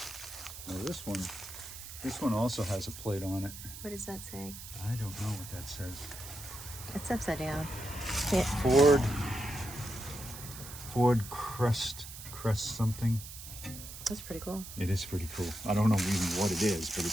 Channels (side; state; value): right; noise; hiss, 12 dB below the sound